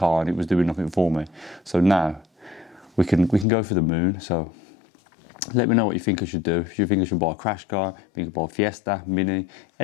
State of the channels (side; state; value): right; drops out; at 3.5 s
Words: and it was doing nothing for me. So now, we can go for the moon. So let me know what you think I should do. If you think I should buy a crash car, if you could buy a Fiesta, Mini,